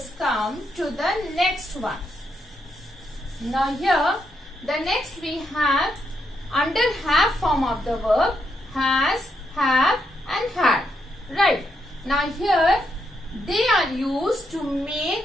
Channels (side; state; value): both; normal; correlation 0.80